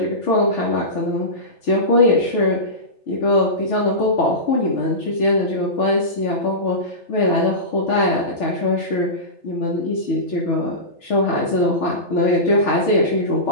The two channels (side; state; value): right; late; 3.4 ms